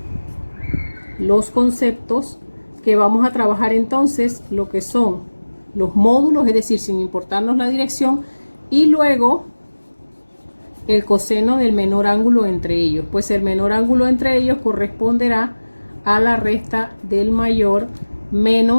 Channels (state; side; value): inverted; both; correlation -1.00